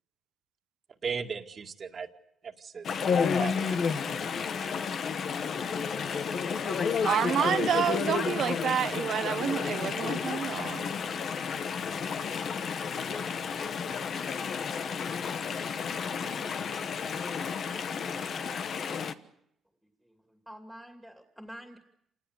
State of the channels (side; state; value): both; normal; correlation 0.71